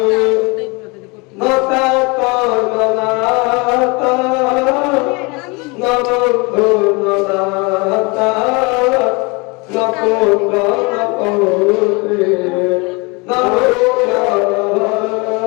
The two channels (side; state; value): right; quieter; 28.3 dB